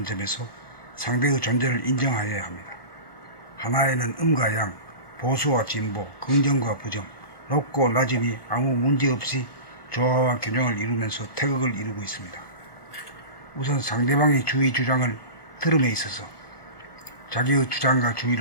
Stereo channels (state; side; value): late; right; 1.3 ms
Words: 점에서 상대의 존재를 인정하여야 합니다. 하나에는 음과 양, 보수와 진보, 긍정과 부정, 높고 낮음이 아무 문제없이 조화와 균형을 이루면서 태극을 이루고 있습니다. 우선 상대방의 주의 주장을 들음에 있어서 자기의 주장과